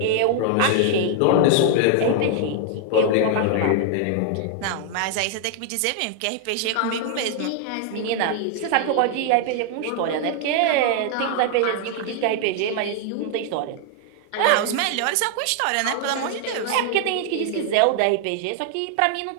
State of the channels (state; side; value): different; both; correlation 0.00